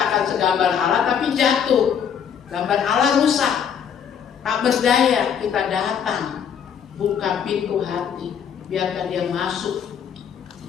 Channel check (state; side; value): quieter; right; 7.9 dB